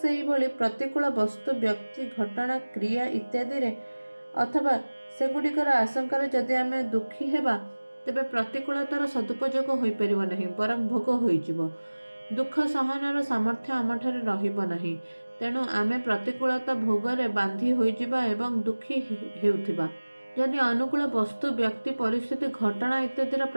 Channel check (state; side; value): inverted; both; correlation -1.00